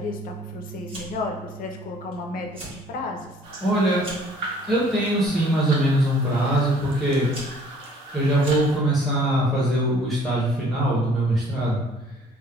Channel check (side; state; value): both; normal; correlation 0.56